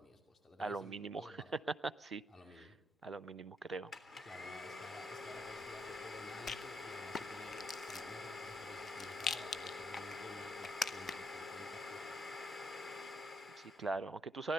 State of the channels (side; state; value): both; normal; correlation 0.76